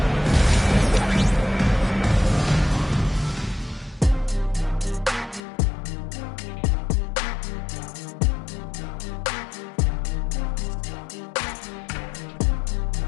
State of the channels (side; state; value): right; drops out; at 5.4 s